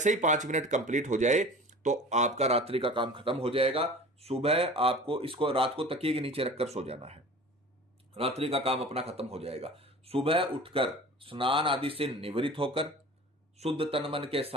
ही 5 मिनट कंप्लीट हो जाए तो आपका रात्रि का काम खत्म हो जाएगा। सुबह आपको इसको रात को तकिए के नीचे रखकर सो जाना है, रात्रि का काम अपना खत्म हो जाएगा। सुबह उठकर स्नान आदि से निवृत्त होकर शुद्ध तन मन के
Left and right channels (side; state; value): both; normal; correlation 0.40